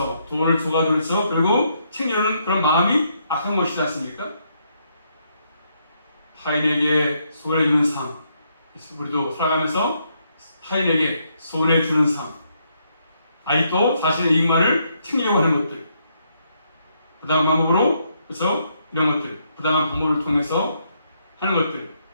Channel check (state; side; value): inverted; both; correlation -0.75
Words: 돈을 줘가지고 그리고 챙겨주는 그런 마음이 악한 것이지 않습니까? 타인에게 손해주는 삶, 우리도 살아가면서 타인에게 손해주는 삶, 아직도 자신의 이익만을 챙기려고 하는 것들, 부당한 방법으로, 그래서 이런 것들, 부당한 방법을 통해서 하는 것들,